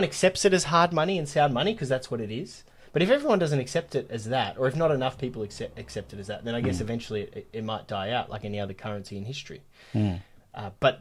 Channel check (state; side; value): identical; both; correlation 1.00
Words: accepts it as hard money and sound money because that's what it is. But if everyone doesn't accept it as that, or if not enough people accept it as that, then I guess eventually it might die out like any other currency in history. But